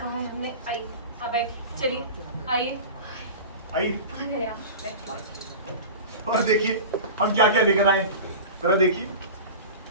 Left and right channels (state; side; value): inverted; both; correlation -0.32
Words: है हमने, आइए। अब चलिए, आइए। आइए। और देखिए हम क्या क्या लेकर आए, जरा देखिए।